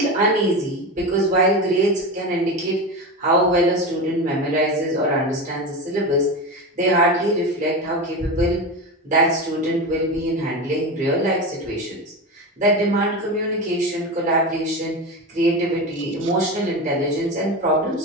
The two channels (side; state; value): both; normal; correlation 0.22